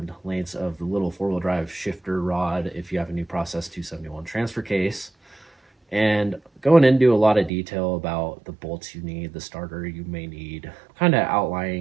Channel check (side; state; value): left; drops out; at 7.5 s